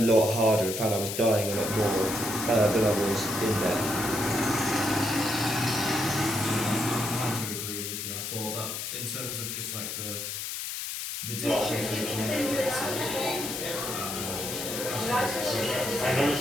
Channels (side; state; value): left; noise; hiss, 5 dB below the sound